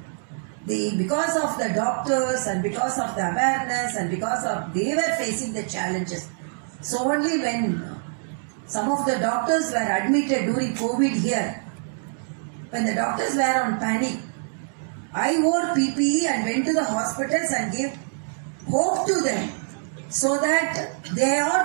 because of the doctors and because of the awareness and because of they were facing the challenges. So only when some of the doctors were admitted during COVID here, when the doctors were on panic, I wore PPE and went to the hospitals and gave hope to them so that they are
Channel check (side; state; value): left; silent; digital silence